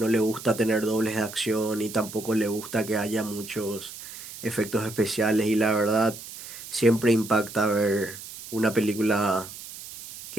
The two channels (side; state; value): right; noise; hiss, 13 dB below the sound